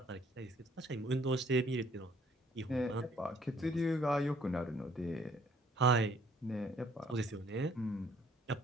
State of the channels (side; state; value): both; normal; correlation 0.61